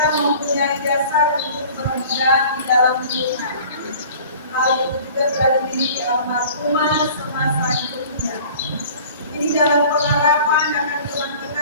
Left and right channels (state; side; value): inverted; both; correlation -0.46